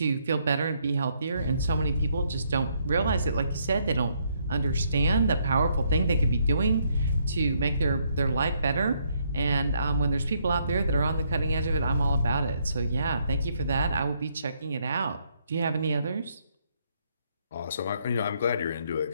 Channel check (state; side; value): inverted; both; correlation -0.72